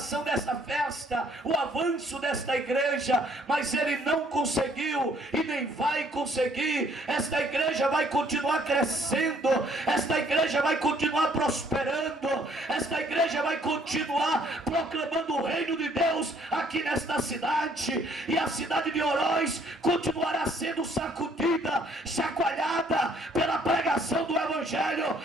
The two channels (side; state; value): both; normal; correlation 0.63